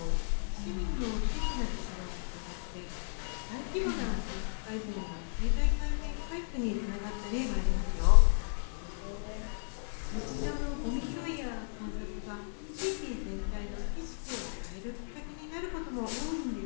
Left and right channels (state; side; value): silent; right; 55 dB below the other